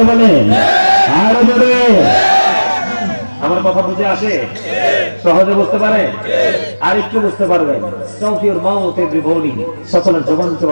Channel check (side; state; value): both; inverted; correlation -1.00